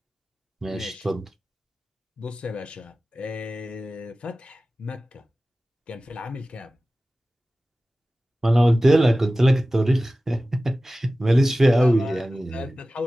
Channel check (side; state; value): both; normal; correlation 0.96